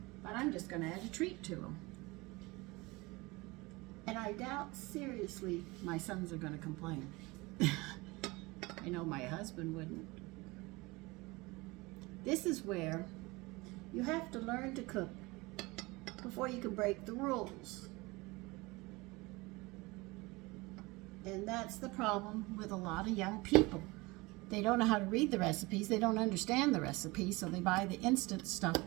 But I'm just going to add a treat to them. And I doubt seriously my sons are going to complain. I know my husband wouldn't. This is where you have to learn to cook before you can break the rules. And that's the problem with a lot of young people. They don't know how to read the recipes. They don't understand the recipes, so they buy the instant stuff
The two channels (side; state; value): left; quieter; 23.4 dB